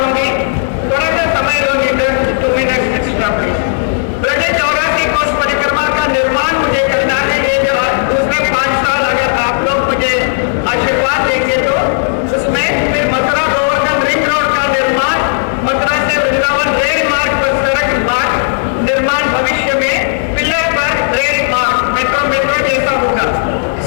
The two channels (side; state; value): right; silent; digital silence